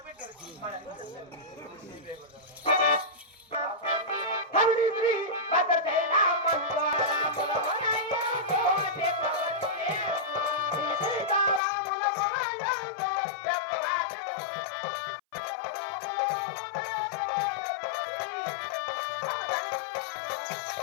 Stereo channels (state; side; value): drops out; right; at 11.6 s